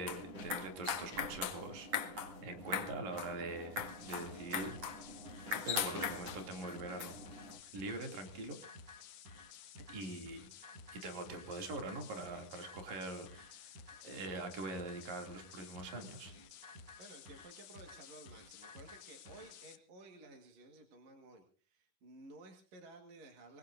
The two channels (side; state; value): left; late; 10 ms